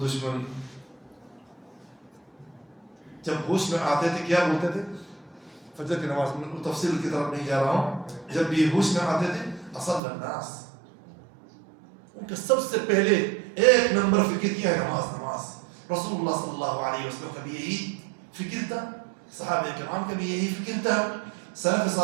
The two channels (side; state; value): left; drops out; at 10.0 s